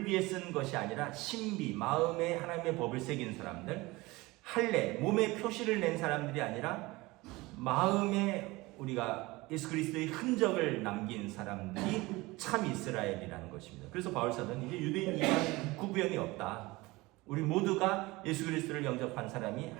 위에 쓴 것이 아니라 신비, 마음에 하나님의 법을 새긴 사람들, 할례, 몸에 표시를 낸 사람들이 아니라 마음에 우리가 예수 그리스도의 흔적을 남긴 사람들이 참 이스라엘이라는 것입니다. 그래서 바울 사도는 이제 유대인 이방 구분이 없다. 우리 모두가 예수 그리스도를 영접한 사람이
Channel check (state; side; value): quieter; left; 21.6 dB